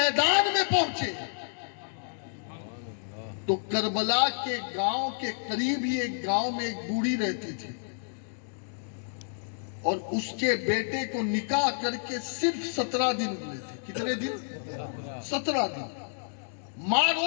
میں پہنچے تو کربلا کے گاؤں کے قریب ہی ایک گاؤں میں ایک بوڑھی رہتی تھی، اور اس کے بیٹے کو نکاح کر کے صرف 17 دن ہوئے تھے. کتنے دن؟ 17 دن. ماں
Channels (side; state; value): right; silent; digital silence